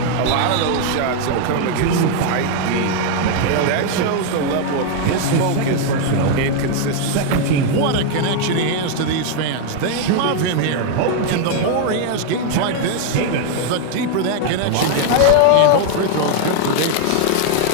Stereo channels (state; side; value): different; both; correlation 0.00